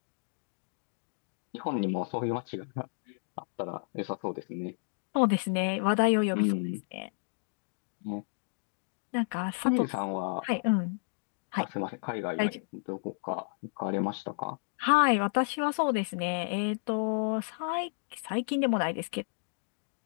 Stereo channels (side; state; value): right; silent; digital silence